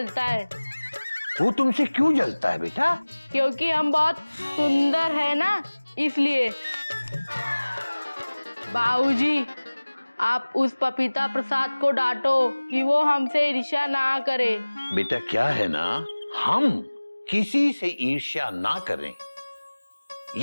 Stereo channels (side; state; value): both; inverted; correlation -1.00